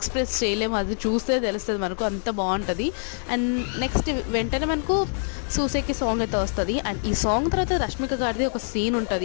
చేయలేము, అది చూస్తే తెలుస్తుంది మనకు, అంత బాగుంటుంది. అండ్ నెక్స్ట్ వెంటనే మనకు సూసేకి సాంగ్ అయితే వస్తుంది. అండ్ ఈ సాంగ్ తర్వాత రష్మిక గారిది ఒక సీన్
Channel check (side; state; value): right; silent; digital silence